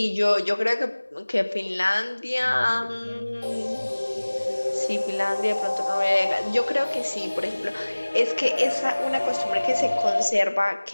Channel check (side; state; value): both; inverted; correlation -1.00